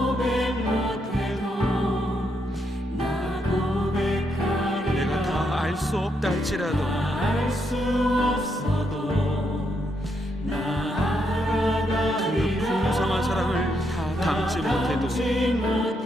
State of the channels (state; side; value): normal; both; correlation 0.79